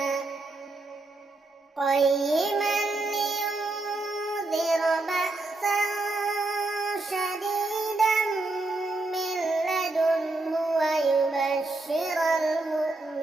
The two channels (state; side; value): quieter; left; 3.1 dB